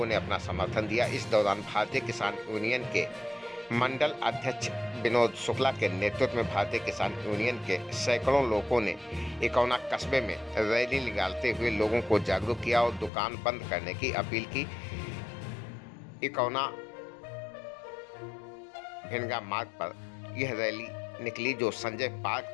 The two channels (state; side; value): drops out; right; at 13.1 s